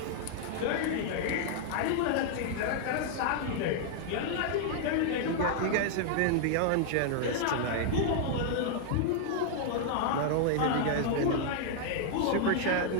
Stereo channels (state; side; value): different; both; correlation -0.01